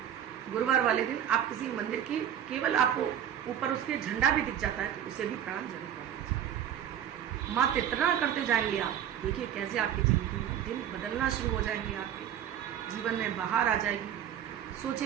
गुरुवार वाले दिन आप किसी मंदिर की केवल आपको ऊपर उसके झंडा भी दिख जाता है तो उसे भी प्रणाम जरूर कर दीजिए। मात्र इतना करते जाएंगे आप, देखिए कैसे आपकी जिंदगी में दिन बदलना शुरू हो जाएंगे, आपके जीवन में बाहर आ जाएगी,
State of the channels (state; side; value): quieter; left; 10.0 dB